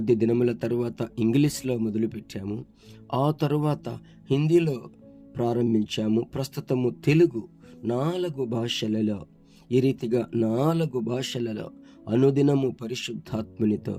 దినముల తరువాత ఇంగ్లీష్లో మొదలుపెట్టాము. ఆ తరువాత హిందీలో ప్రారంభించాము. ప్రస్తుతము తెలుగు 4 భాషలలో, ఈ రీతిగా 4 భాషలలో అనుదినము పరిశుద్ధాత్మనితో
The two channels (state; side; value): identical; both; correlation 1.00